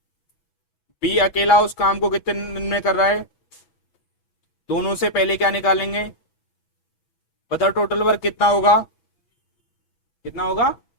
बी अकेला उस काम को कितने दिन में कर रहा है? दोनों से पहले क्या निकालेंगे? बताओ टोटल वर्क कितना होगा? कितना होगा?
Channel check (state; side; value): late; right; 6.1 ms